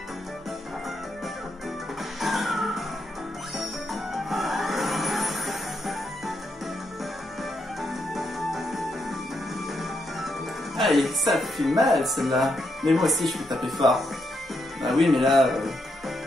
Allez, ça fait mal celle-là. Mais moi aussi je peux taper fort. Bah oui, mais là,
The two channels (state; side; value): normal; both; correlation 0.80